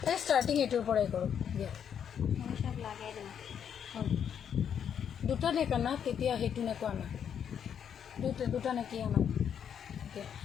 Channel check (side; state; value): right; quieter; 8.3 dB